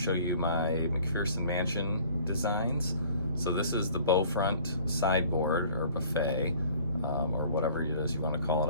you my McPherson Mansion designs. So this is the bow front sideboard or buffet, or whatever it is you want to call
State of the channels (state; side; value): inverted; both; correlation -0.52